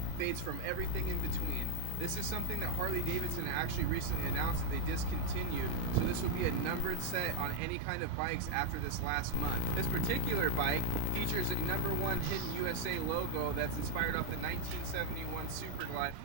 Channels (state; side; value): different; both; correlation 0.00